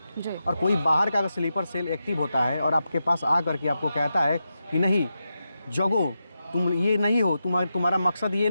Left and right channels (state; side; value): inverted; both; correlation -0.88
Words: और कोई बाहर का अगर स्लीपर सेल एक्टिव होता है और आपके पास आ करके आपको कहता है कि नहीं जगो, तुम ये नहीं हो, तुम्हारा मकसद ये